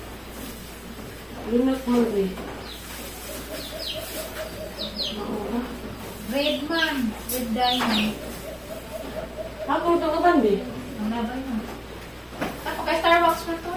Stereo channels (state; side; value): identical; both; correlation 1.00